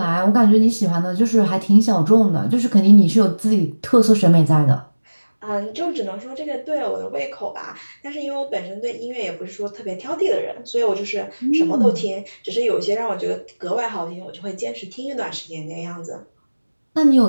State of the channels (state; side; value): inverted; both; correlation -1.00